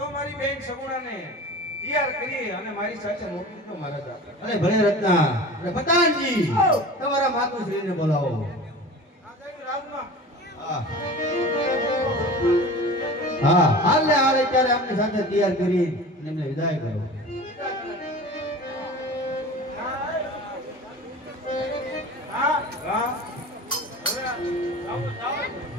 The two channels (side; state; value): both; normal; correlation 0.36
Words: મારી બેન સગુણાને તૈયાર કરી અને મારી સાથે મોકલી દો મહારાજા. અરે ભલે રત્ના. અરે પતાનજી તમારા માતુશ્રીને બોલાવો. હા હા હાલ ને હાલ અત્યારે આપની સાથે તૈયાર કરી એમને વિદાય કરો.